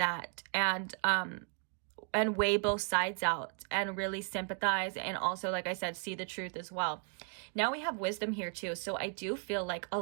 And weigh both sides out and really sympathize, and also, like I said, see the truth as well. Now we have wisdom here too. So I do feel like a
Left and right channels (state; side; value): quieter; left; 39.8 dB